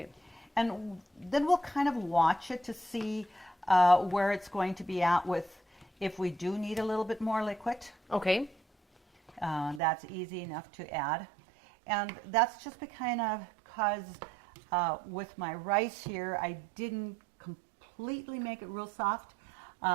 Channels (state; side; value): drops out; left; at 9.8 s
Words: And then we'll kind of watch it to see where it's going to be at with if we do need a little bit more liquid. Okay. That's easy enough to add. And that's just because with my rice here, I didn't completely make it real soft,